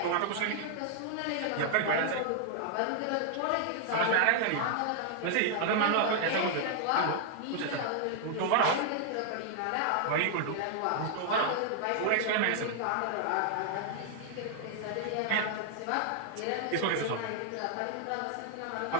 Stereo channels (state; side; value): different; both; correlation -0.01